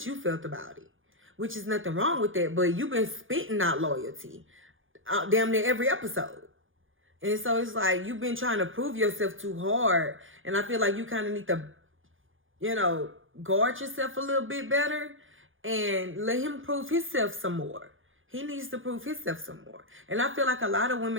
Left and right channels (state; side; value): late; left; 0.58 ms